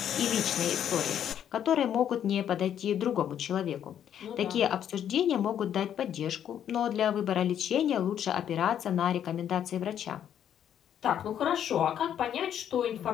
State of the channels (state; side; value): quieter; right; 9.7 dB